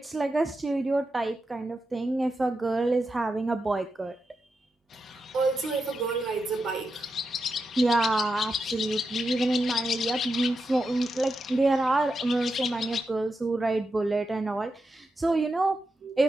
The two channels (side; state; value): both; normal; correlation 0.88